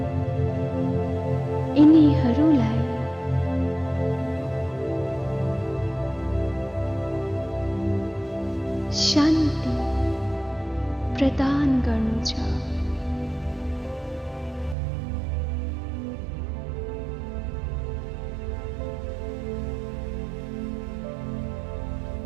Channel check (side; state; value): left; drops out; at 14.8 s